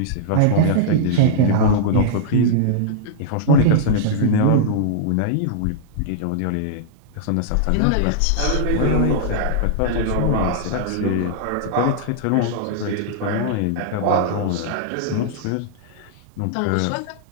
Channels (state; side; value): different; both; correlation -0.02